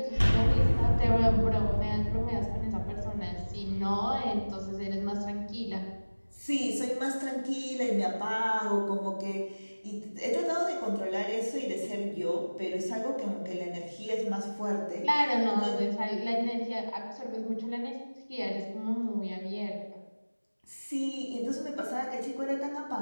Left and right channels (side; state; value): both; inverted; correlation -1.00